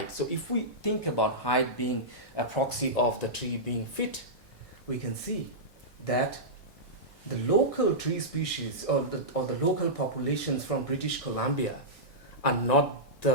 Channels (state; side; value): normal; both; correlation -0.13